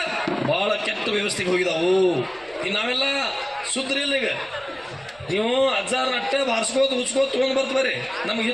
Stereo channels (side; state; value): right; noise; rumble, 28 dB below the sound